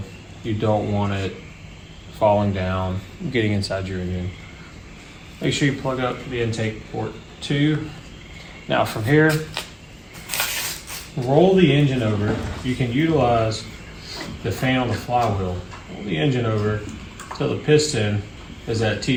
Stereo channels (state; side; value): identical; both; correlation 1.00